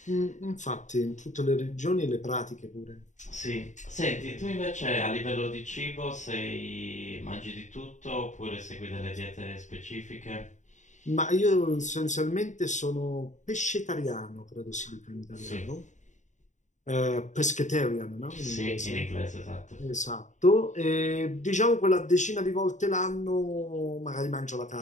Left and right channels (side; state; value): right; late; 0.35 ms